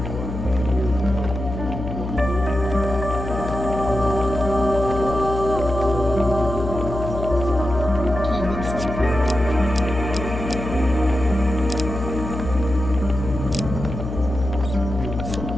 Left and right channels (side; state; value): left; noise; hum, 6 dB below the sound